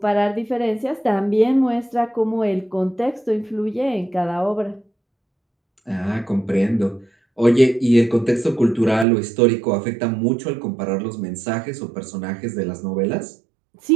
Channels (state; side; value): drops out; left; at 9.1 s